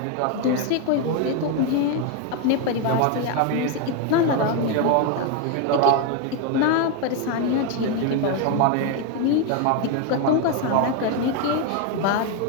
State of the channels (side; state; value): both; different; correlation 0.02